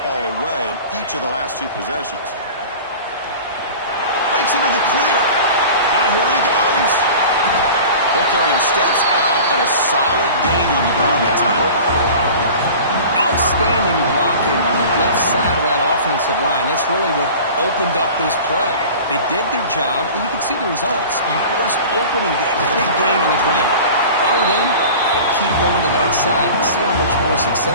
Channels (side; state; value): both; inverted; correlation -0.39